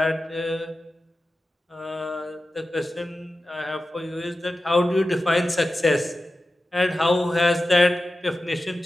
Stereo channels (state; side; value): normal; both; correlation 0.94